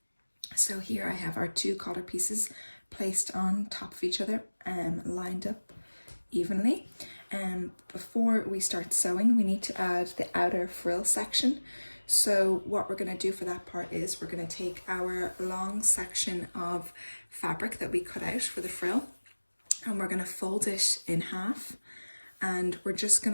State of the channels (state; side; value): inverted; both; correlation -1.00